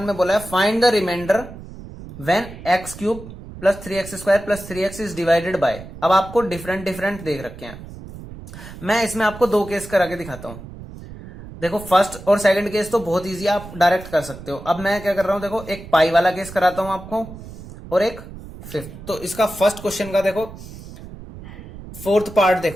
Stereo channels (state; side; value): noise; right; rumble, 14 dB below the sound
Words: में बोला है, find the remainder when x³ plus 3x² plus 3x is divided by. अब आपको डिफरेंट देख रखे हैं, मैं इसमें आपको 2 केस करा के दिखाता हूं। देखो फर्स्ट और सेकंड केस तो बहुत इजी, आप डायरेक्ट कर सकते हो। अब मैं क्या कर रहा हूं, देखो एक पाई वाला केस कराता हूं आपको और एक फिफ्थ। तो इसका फर्स्ट क्वेश्चन का देखो फोर्थ पार्ट,